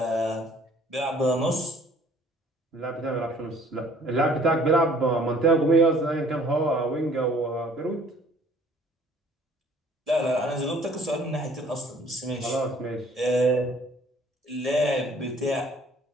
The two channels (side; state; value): both; normal; correlation 0.56